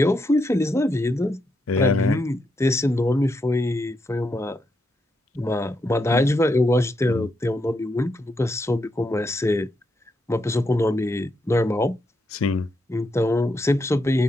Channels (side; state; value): both; normal; correlation 0.81